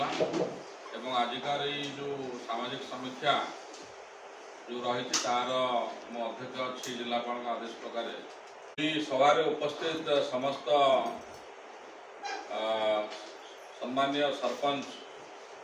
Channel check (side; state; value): both; identical; correlation 1.00